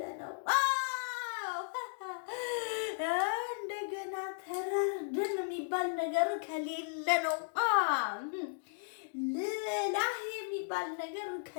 ነው እንደገና ተራርደን የሚባል ነገር ከሌለ ነው ልላህ የሚባል ነገር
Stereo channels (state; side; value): silent; right; digital silence